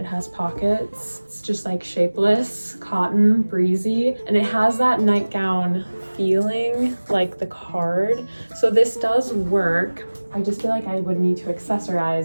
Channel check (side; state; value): both; inverted; correlation -1.00